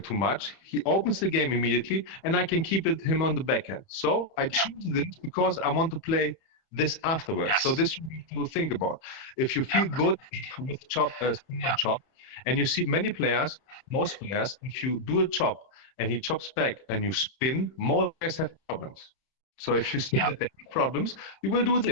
much. He opens the game immediately, and I can keep him on the back end. So I choose this because I want to play this afterwards. So this you have to think about. If you feel good with chop, spin and chop, and you see many players, most players, if you do a chop and he chops back and you spin, most players have problems. So if you see that they have problems, you will do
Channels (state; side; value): late; right; 31 ms